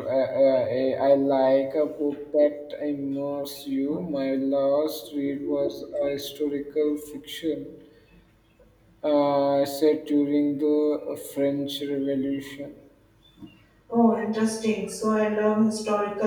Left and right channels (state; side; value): identical; both; correlation 1.00